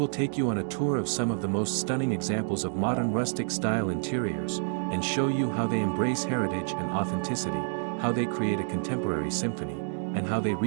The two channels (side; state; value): left; silent; digital silence